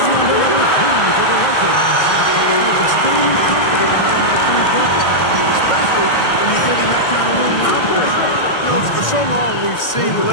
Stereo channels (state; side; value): late; right; 1.6 ms